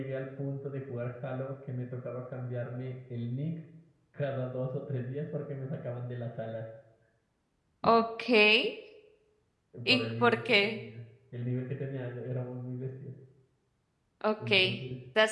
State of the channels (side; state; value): both; identical; correlation 1.00